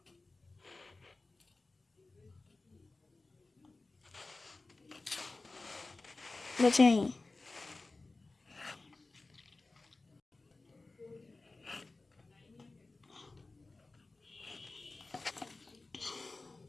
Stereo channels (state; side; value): quieter; right; 3.4 dB